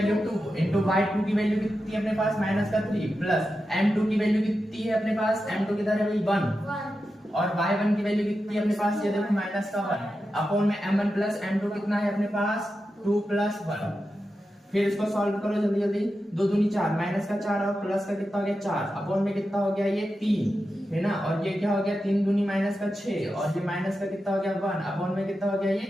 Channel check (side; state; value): both; normal; correlation 0.90